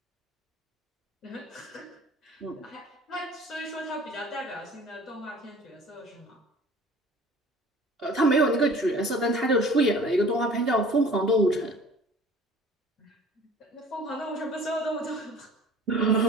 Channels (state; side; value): normal; both; correlation 0.47